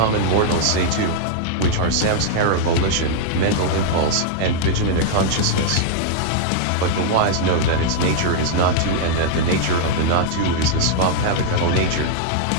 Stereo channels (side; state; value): both; different; correlation -0.01